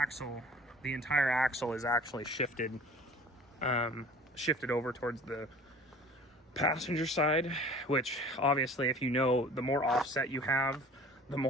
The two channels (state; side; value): normal; both; correlation 0.46